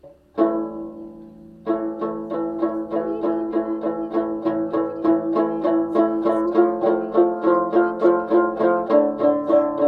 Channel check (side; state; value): both; identical; correlation 1.00